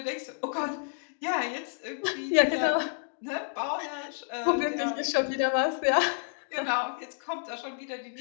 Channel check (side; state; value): right; silent; digital silence